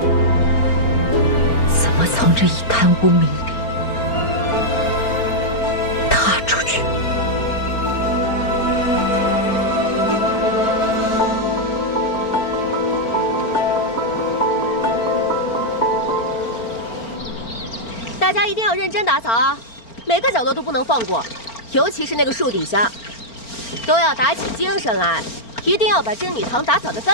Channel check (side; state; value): right; late; 4.4 ms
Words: 怎么从这一滩污名里踏出去。大家一定要认真打扫啊，每个角落都不能放过，尤其是那个树底下，都要打起精神来，一定要把真女堂打扫得